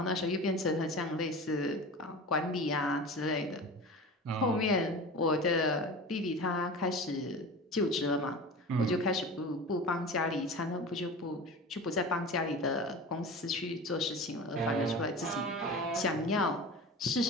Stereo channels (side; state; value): both; normal; correlation 0.33